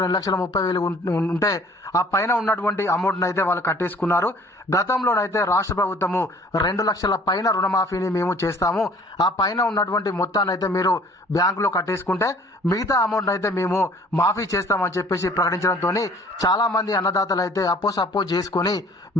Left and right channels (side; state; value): both; normal; correlation 0.53